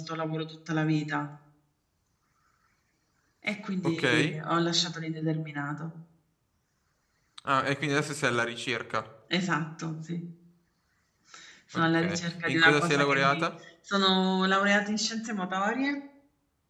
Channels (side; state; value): both; identical; correlation 1.00